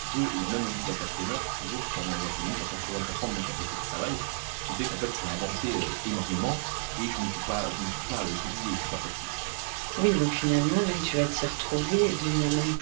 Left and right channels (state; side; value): silent; left; digital silence